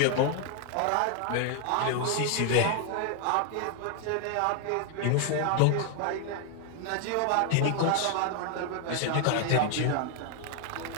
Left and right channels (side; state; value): both; different; correlation 0.00